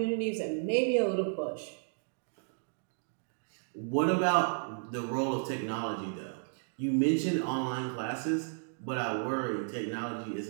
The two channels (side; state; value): left; silent; digital silence